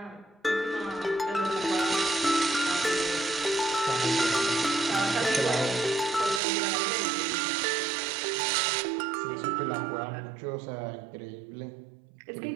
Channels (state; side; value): drops out; left; at 6.4 s